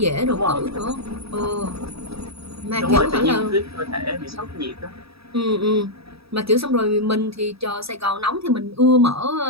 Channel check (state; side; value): late; left; 0.77 ms